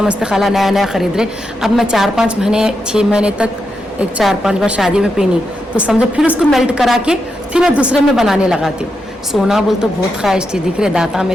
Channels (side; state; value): both; normal; correlation 0.85